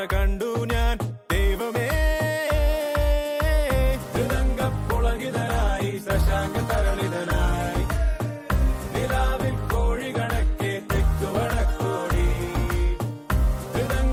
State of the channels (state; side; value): identical; both; correlation 1.00